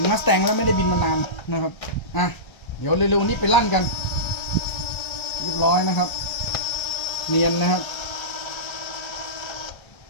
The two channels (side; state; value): right; late; 1.3 ms